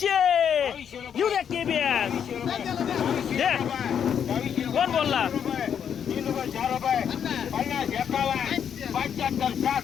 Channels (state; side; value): quieter; right; 8.2 dB